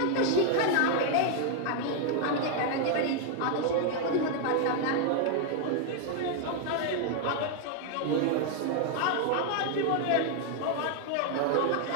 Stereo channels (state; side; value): different; both; correlation 0.00